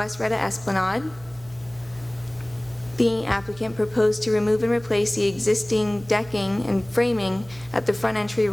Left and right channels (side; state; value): right; noise; hum, 20 dB below the sound